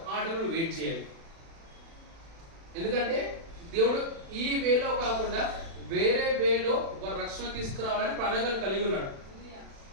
ఆ టైంలో నువ్వు వెయిట్ చేయాలి. ఎందుకంటే దేవుడు ఈ వేలో కాకుండా వేరే వేలో వారు రక్షణ తీసుకురావాలని ప్రణాళికలు కలిగి ఉన్నాడు.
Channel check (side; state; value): left; late; 36 ms